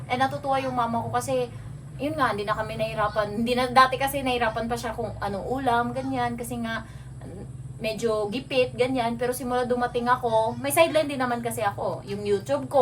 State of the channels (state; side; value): identical; both; correlation 1.00